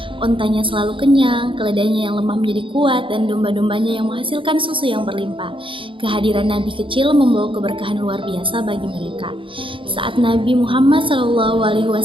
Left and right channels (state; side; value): late; left; 0.25 ms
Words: ontanya selalu kenyang, keledainya yang lemah menjadi kuat, dan domba-dombanya yang menghasilkan susu yang berlimpah. Kehadiran Nabi kecil membawa keberkahan luar biasa bagi mereka. Saat Nabi Muhammad